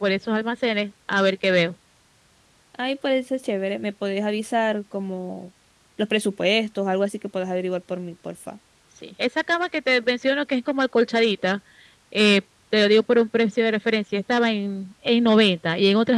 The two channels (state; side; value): identical; both; correlation 1.00